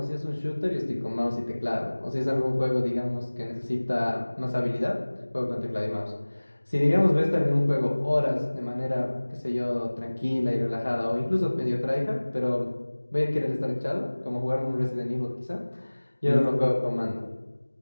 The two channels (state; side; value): inverted; both; correlation -1.00